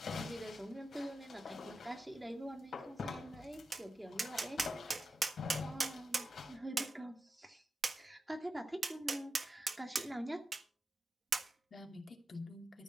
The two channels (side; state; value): both; normal; correlation 0.91